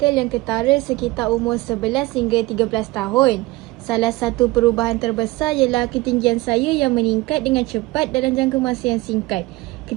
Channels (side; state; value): left; quieter; 20.3 dB